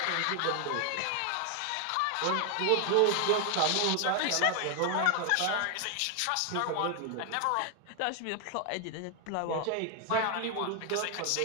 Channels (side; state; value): both; different; correlation 0.00